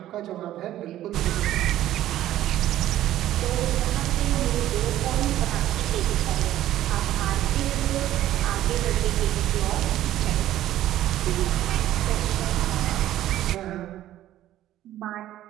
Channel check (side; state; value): left; quieter; 13.4 dB